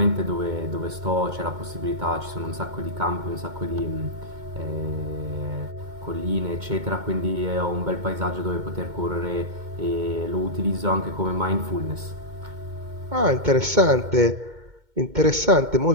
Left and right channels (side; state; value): left; late; 2.2 ms